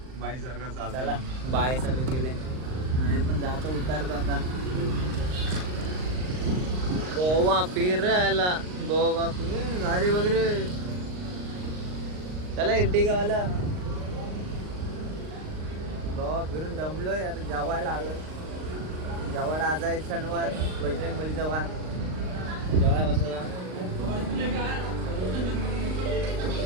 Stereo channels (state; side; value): late; left; 39 ms